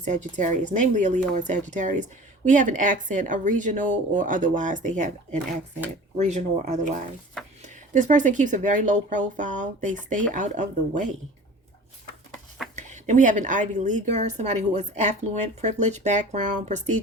Sagittarius. Namely a Leo or Sagittarius. We have an accent, a regional or otherwise. They have an accent, regional or otherwise. This person keeps a very low profile. They stay out of the way. Then we have an Ivy Leaguer, somebody who is affluent, privileged background,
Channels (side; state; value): both; normal; correlation 0.41